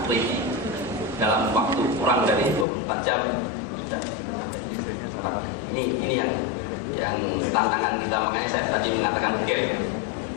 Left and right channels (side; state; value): right; drops out; at 2.7 s